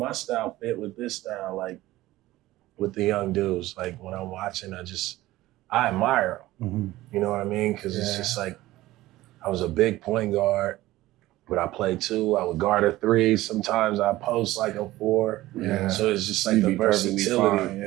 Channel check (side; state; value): left; quieter; 16.8 dB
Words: style fit with this style, like with the young dudes. Like when I'm watching, I admire them. You know what I mean? Because it's just like I was a big point guard, but I played 2. I would guard a 3. Sometimes I post like a 4. Yeah. So it's just like You'd the be perfectly versatility. fine,